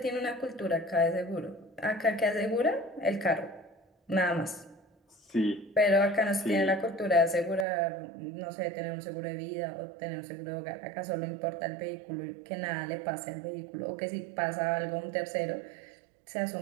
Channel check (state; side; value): drops out; left; at 7.7 s